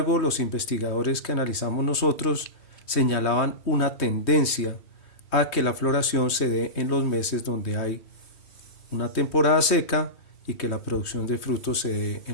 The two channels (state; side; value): late; right; 3.1 ms